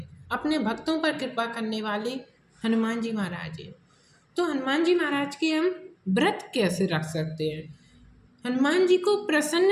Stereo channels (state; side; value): identical; both; correlation 1.00